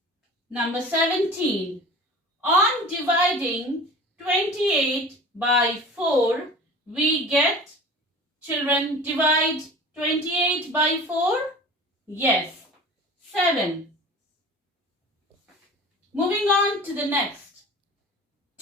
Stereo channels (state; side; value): normal; both; correlation 0.39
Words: Number 17. On dividing 28 by 4, we get, children, divide 28 by 4? Yes, 7. Moving on to the next.